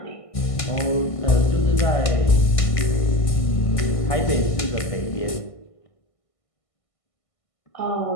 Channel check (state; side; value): late; right; 1.5 ms